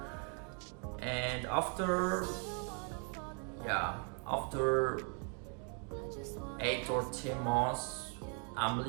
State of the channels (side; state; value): left; quieter; 37.6 dB